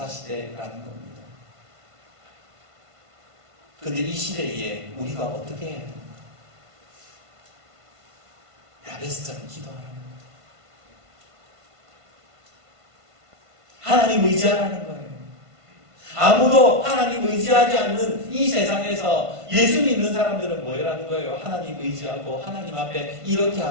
시대라는 겁니다. 그런데 이 시대에 우리가 어떻게 해야 됩니까? 야베스처럼 기도하라는 거예요. 하나님 의지하라는 거예요. 아무도 하나님 의지하지 않는 이 세상에서 예수 믿는 사람들은 뭐라는 거예요? 하나님 의지하고 하나님 앞에 이렇게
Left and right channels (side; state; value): left; late; 1.5 ms